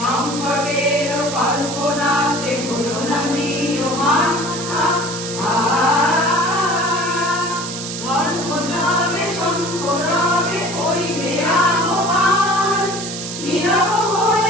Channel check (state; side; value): noise; right; hiss, 7 dB below the sound